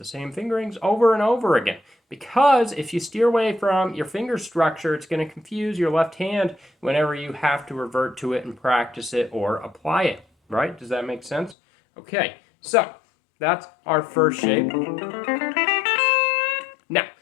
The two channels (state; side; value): drops out; right; at 11.6 s